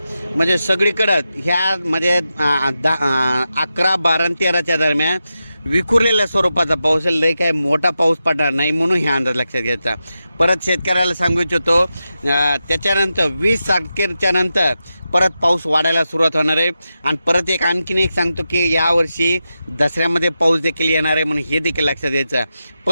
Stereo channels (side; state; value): both; inverted; correlation -0.90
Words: म्हणजे सगळीकडं ह्या म्हणजे 11, 12 आणि 13च्या दरम्यान विखुरलेल्या स्वरूपाचा पाऊस आहे. लय काय मोठा पाऊस पडणार नाही म्हणून हे अंदाज लक्षात घ्यायचा. परत शेतकऱ्याला सांगू इच्छितो त्याच्यानंतर 20 तारखेच्या नंतर परत पाऊस वाढायला सुरुवात होणार आहे. आणि परत आणखीन एक सांगतो की यावर्षी दसऱ्यामध्ये पाऊस देखील येणार आहे म्हणून हे देखील लक्षात घ्यायचं.